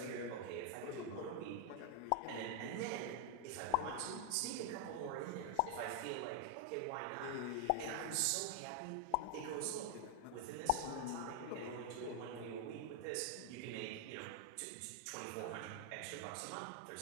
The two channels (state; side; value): different; both; correlation 0.00